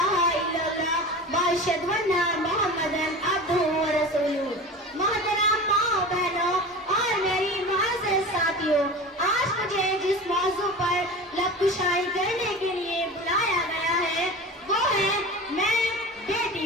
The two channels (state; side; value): normal; both; correlation 0.33